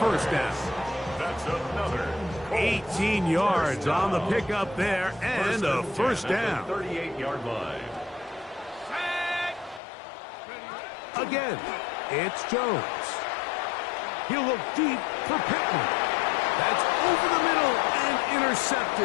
down. That's another 18 yards on the pickup there, and a 1st down. 38-yard line. Again, it's Jones. He'll look deep for Pittman. That's over the middle and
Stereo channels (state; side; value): drops out; right; at 9.8 s